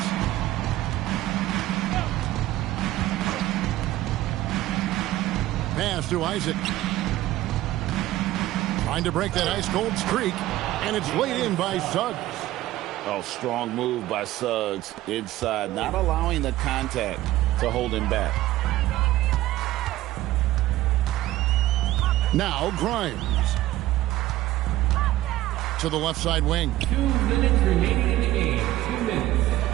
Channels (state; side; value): quieter; left; 15.6 dB